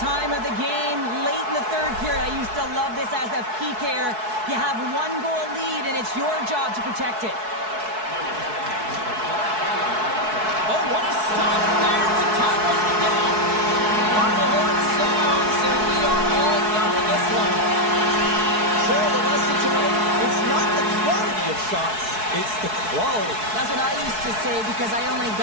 of the game, late in the third period. I used to love this as a PKer. You have one goal lead, and it's your job to protect it. Oh, what a stop there with time running down. Final horn sounds, and we are all done with this one. So the lesson tonight, it's not the quantity of shots, it's the quality. That's what I used to say because I only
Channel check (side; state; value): left; late; 4.6 ms